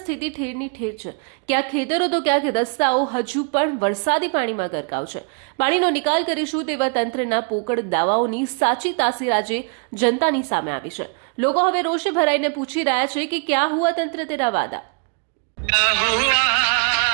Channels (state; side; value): quieter; left; 38.9 dB